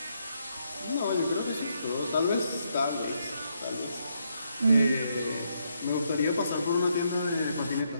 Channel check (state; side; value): inverted; both; correlation -0.77